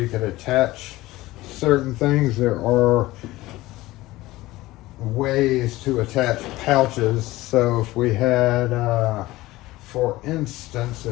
could attach certain things. There are ways to attach pouches. So if we had, for instance,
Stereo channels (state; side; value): quieter; right; 18.2 dB